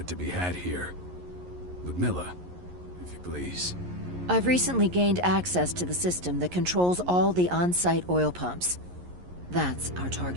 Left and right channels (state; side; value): late; left; 11 ms